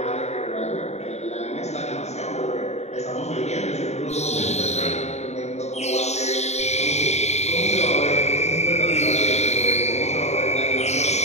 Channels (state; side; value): late; right; 0.32 ms